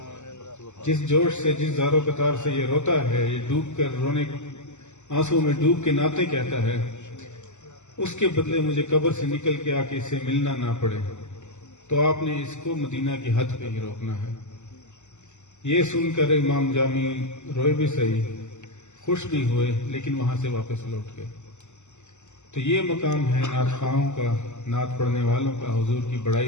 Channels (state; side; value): late; right; 0.84 ms